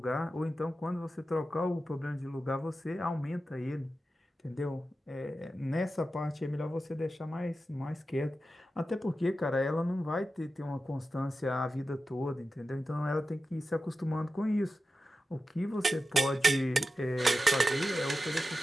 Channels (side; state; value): both; normal; correlation 0.92